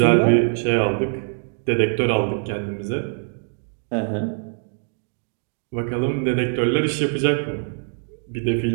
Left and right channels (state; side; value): silent; left; 56 dB below the other